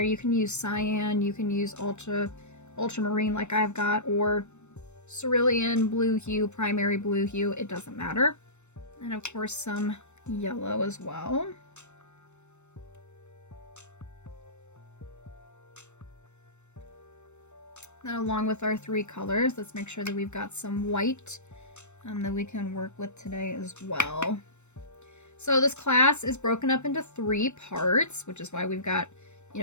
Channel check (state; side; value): late; right; 0.83 ms